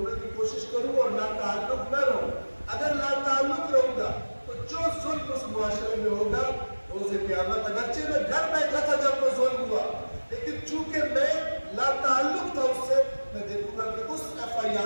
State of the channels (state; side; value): inverted; both; correlation -1.00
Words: کی کوشش کروں اور لا تعلق نہ رہوں. اگر لا تعلق رہوں گا تو جو ظلم اس معاشرے میں ہوگا روز قیامت, اگرچہ میں گھر بیٹھا تھا جب وہ ظلم ہوا, لیکن چونکہ میں لا تعلق تھا اس سے, میں دیکھوں گا کہ اس